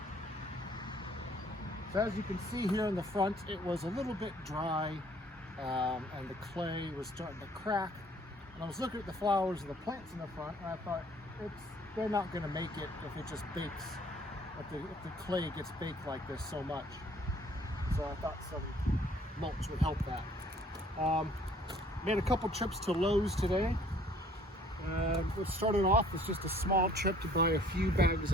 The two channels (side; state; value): both; normal; correlation 0.58